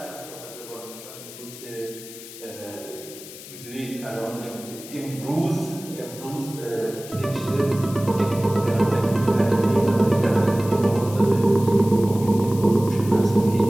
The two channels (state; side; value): noise; left; hiss, 15 dB below the sound